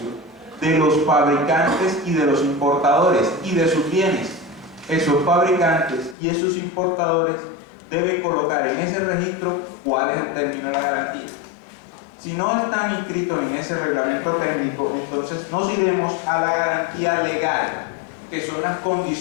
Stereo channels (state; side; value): drops out; right; at 6.2 s